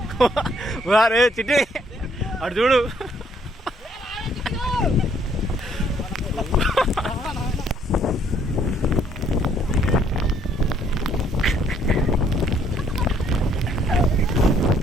రే చిట్టి అటు చూడు.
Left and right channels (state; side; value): normal; both; correlation 0.66